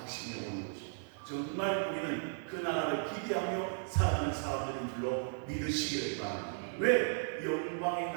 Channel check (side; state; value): left; silent; 54 dB below the other